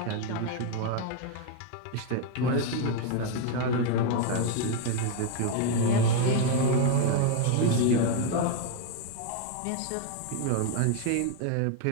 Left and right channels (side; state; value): both; different; correlation 0.01